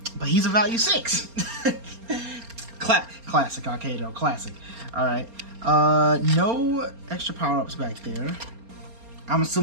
But he's a value 6. Classic AKEDO, classic. Alright. No extra power-ups back there. I'm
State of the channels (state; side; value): late; left; 4.3 ms